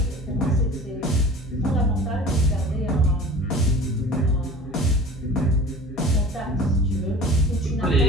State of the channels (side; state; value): both; normal; correlation 0.41